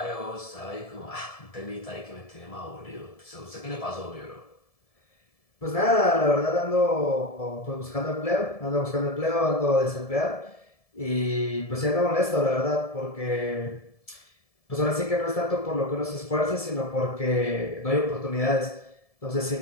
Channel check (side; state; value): right; late; 1.7 ms